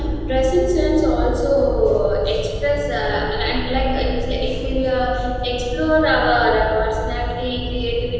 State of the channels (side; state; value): both; identical; correlation 1.00